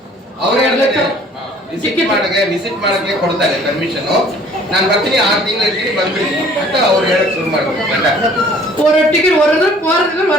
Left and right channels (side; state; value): both; normal; correlation 0.54